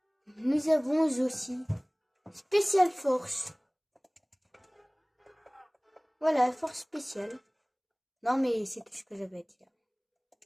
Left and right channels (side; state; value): both; identical; correlation 1.00